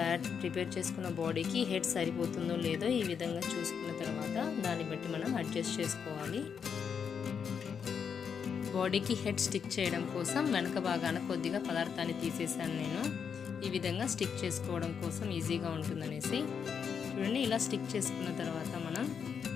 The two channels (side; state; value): right; quieter; 6.9 dB